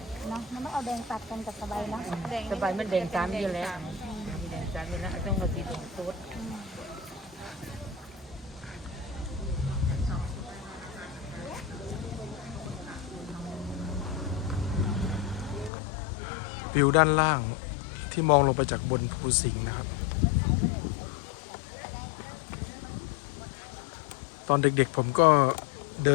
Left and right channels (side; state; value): right; drops out; at 15.7 s